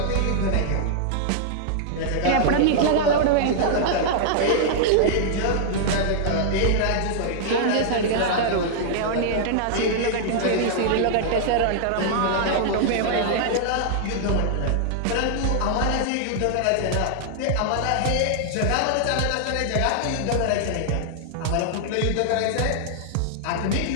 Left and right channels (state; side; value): different; both; correlation -0.01